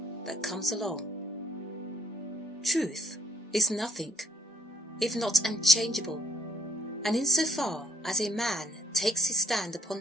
that comes along. Truth is nothing, if not unchangeable, and insofar as a man takes his stand upon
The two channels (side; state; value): both; normal; correlation 0.63